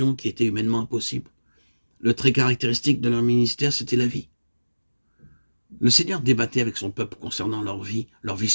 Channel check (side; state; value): both; inverted; correlation -1.00